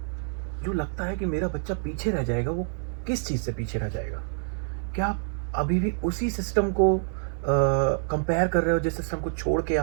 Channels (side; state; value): left; silent; 60 dB below the other